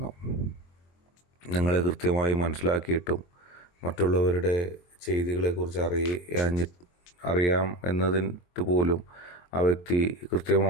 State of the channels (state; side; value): late; right; 23 ms